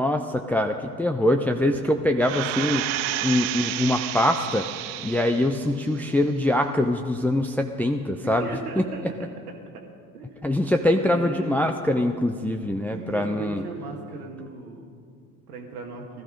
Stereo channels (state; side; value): normal; both; correlation 0.73